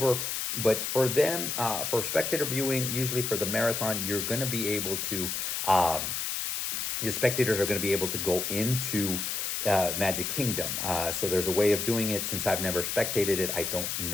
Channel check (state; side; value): noise; left; hiss, 2 dB below the sound